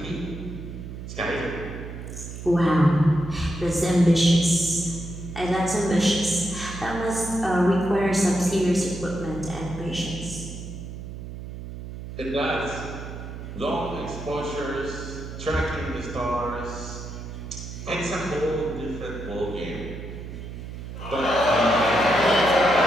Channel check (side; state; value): right; noise; hum, 10 dB below the sound